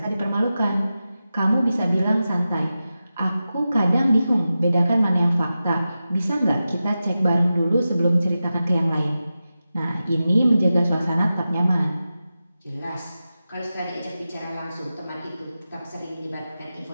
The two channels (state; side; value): inverted; both; correlation -0.93